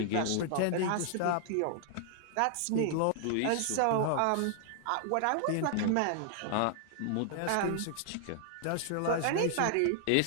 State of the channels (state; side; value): different; both; correlation 0.00